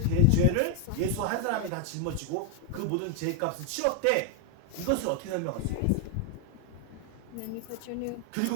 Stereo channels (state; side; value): different; both; correlation 0.00